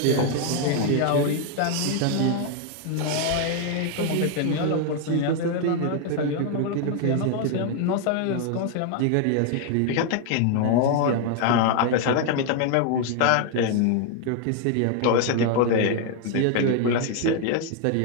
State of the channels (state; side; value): different; both; correlation 0.00